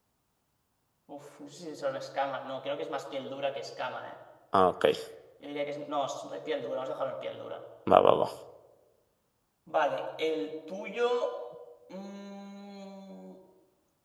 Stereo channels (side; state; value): both; identical; correlation 1.00